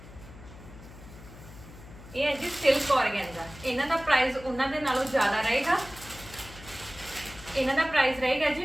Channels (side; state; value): left; noise; hum, 17 dB below the sound